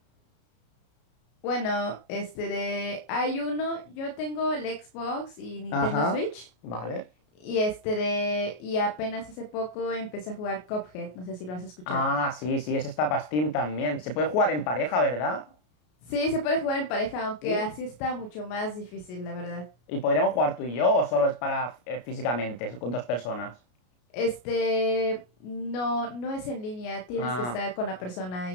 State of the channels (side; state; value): right; late; 33 ms